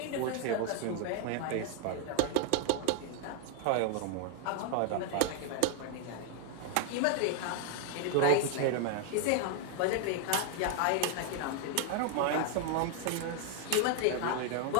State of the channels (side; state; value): both; different; correlation 0.00